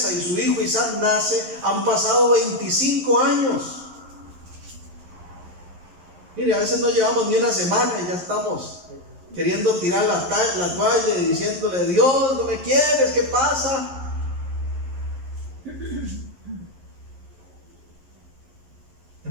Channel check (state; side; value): late; left; 11 ms